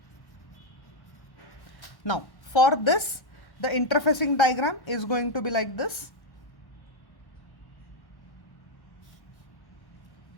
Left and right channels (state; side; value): late; right; 1.1 ms